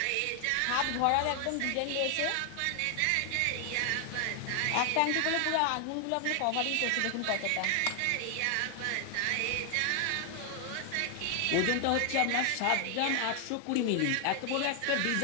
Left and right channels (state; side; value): different; both; correlation 0.00